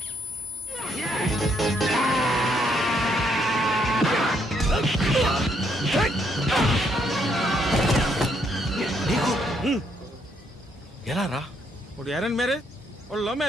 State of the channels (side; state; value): both; normal; correlation 0.73